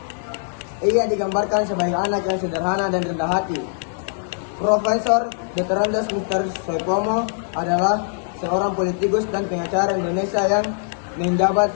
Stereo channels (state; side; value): silent; right; digital silence